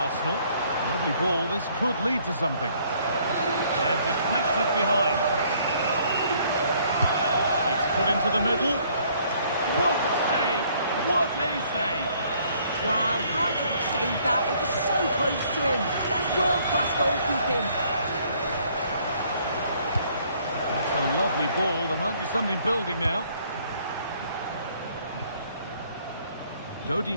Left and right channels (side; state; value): both; inverted; correlation -0.63